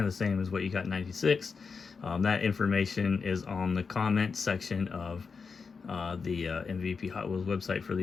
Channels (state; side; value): quieter; right; 5.3 dB